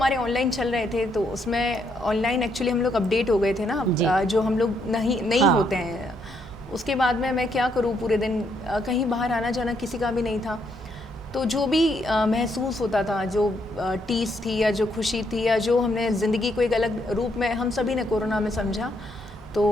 ऑनलाइन चल रहे थे, तो उसमें ऑनलाइन एक्चुअली हम लोग अपडेट हो गए थे ना, जो हम लोग नहीं हाँ। होते हैं। उसके बाद में मैं क्या करूँ, पूरे दिन कहीं बाहर आना जाना किसी का भी नहीं था। तो जो भी महसूस होता था, जो टीस थी या जो खुशी थी या जो हमने ज़िंदगी को एक अलग रूप में हम सभी ने कोरोना में समझा, तो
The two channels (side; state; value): both; normal; correlation 0.74